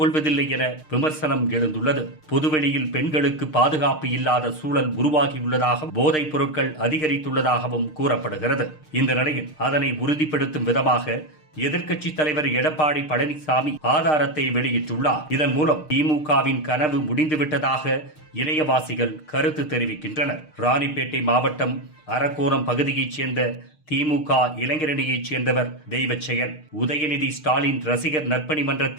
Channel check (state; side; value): late; right; 6.5 ms